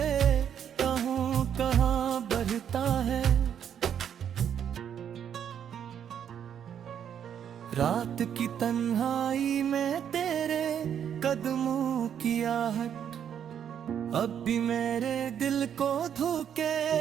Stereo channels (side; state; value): left; quieter; 8.9 dB